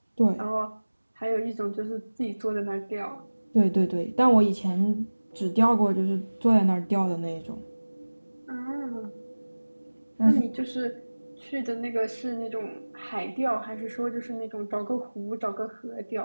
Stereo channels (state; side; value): inverted; both; correlation -1.00